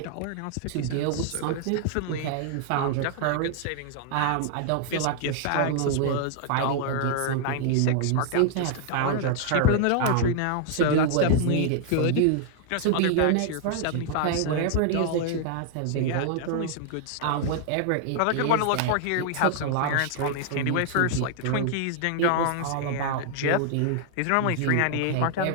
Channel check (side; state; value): both; different; correlation 0.00